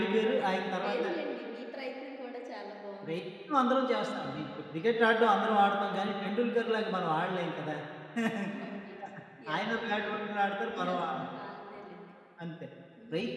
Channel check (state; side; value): identical; both; correlation 1.00